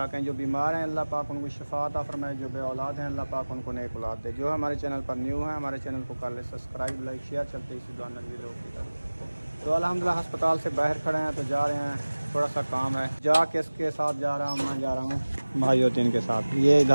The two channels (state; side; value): inverted; both; correlation -1.00